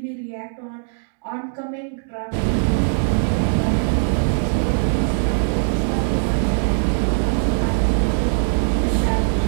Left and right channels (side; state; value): left; silent; digital silence